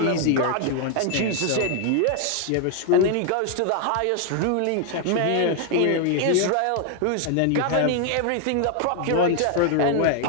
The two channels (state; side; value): different; both; correlation 0.00